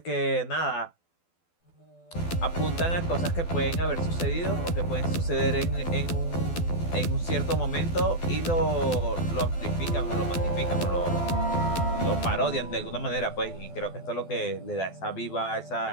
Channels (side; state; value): right; late; 12 ms